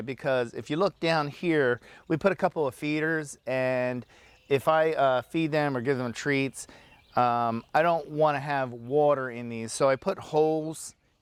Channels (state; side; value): identical; both; correlation 1.00